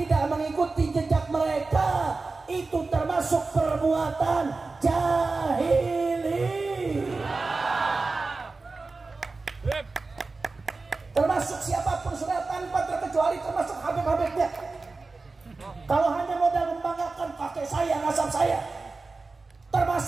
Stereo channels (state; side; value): quieter; left; 3.8 dB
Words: mengikuti jejak mereka, itu termasuk perbuatan jahili. Termasuk siapapun sudah tanpa terkecuali, termasuk habib-habibnya. Kalau hanya modal membanggakan kakek saya, nasab saya, termasuk